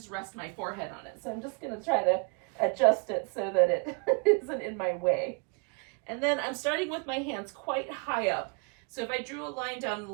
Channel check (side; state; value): left; quieter; 35.6 dB